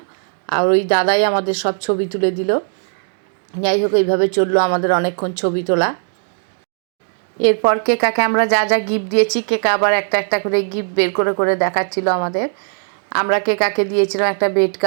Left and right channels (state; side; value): silent; left; digital silence